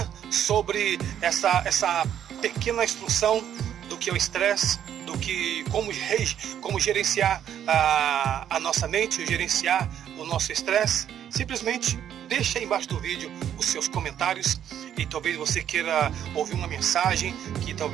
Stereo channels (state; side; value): quieter; left; 9.9 dB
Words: sobre essa pequena instrução do que é o estresse, do que como gerenciar a nossa mente, gerenciar o nosso estresse, simplesmente deixa aí embaixo do vídeo os seus comentários, e talvez você queira ouvir uma mensagem que